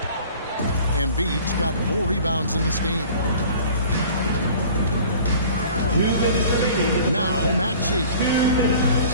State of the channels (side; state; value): both; inverted; correlation -0.46